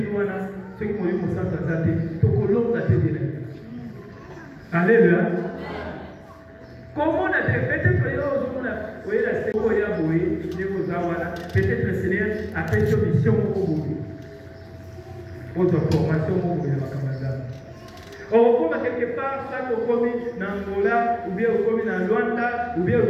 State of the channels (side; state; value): both; identical; correlation 1.00